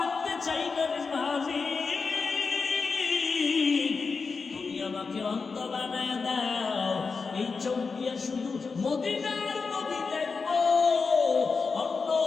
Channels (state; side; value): quieter; right; 4.8 dB